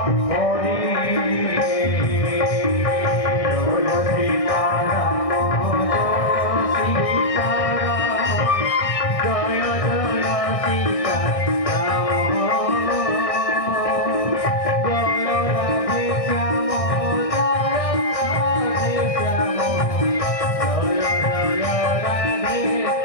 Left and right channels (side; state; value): right; late; 1.6 ms